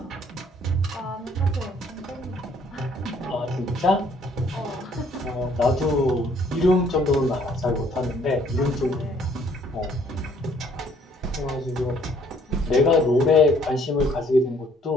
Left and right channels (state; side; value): normal; both; correlation 0.62